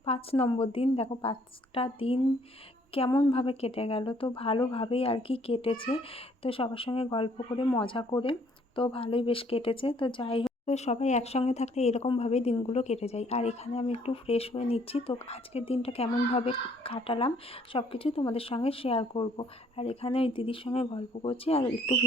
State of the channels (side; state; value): both; normal; correlation 0.63